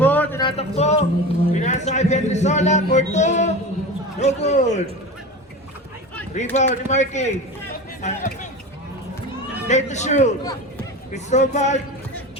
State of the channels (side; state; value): both; normal; correlation 0.29